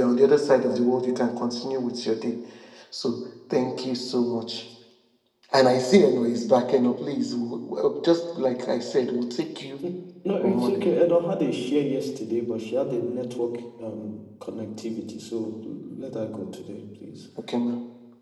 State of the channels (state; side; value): identical; both; correlation 1.00